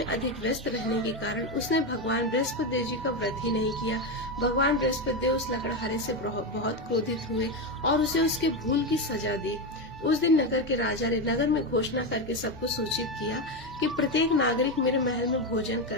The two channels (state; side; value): normal; both; correlation 0.12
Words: अधिक व्यस्त रहने के कारण उसने भगवान बृहस्पति देव जी का व्रत ही नहीं किया। भगवान बृहस्पति देव उस लकड़हारे से बहुत क्रोधित हुए और उसे उसके भूल की सजा दी। उस दिन नगर के राजा ने नगर में घोषणा करके सबको सूचित किया कि प्रत्येक नागरिक मेरे महल में भोजन